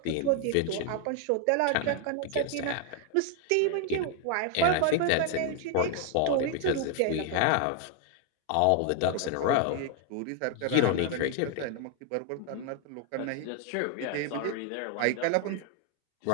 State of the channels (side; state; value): both; different; correlation 0.00